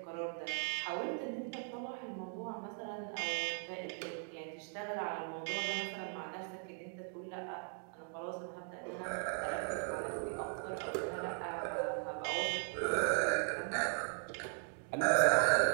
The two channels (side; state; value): left; silent; 52 dB below the other